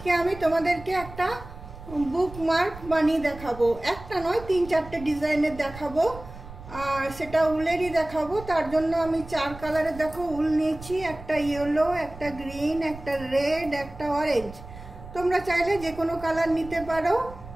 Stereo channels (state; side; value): noise; right; rumble, 15 dB below the sound